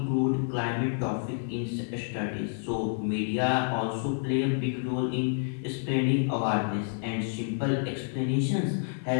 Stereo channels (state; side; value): silent; right; 59 dB below the other